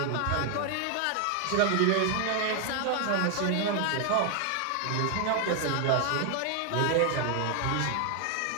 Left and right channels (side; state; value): both; different; correlation 0.00